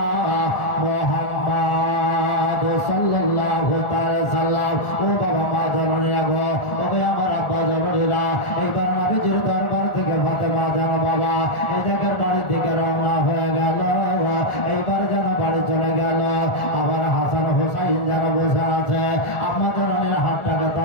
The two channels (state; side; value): late; right; 1.4 ms